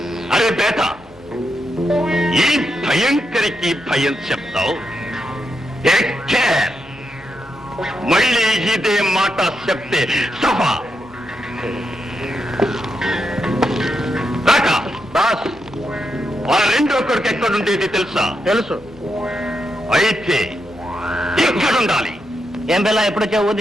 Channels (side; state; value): left; noise; hum, 25 dB below the sound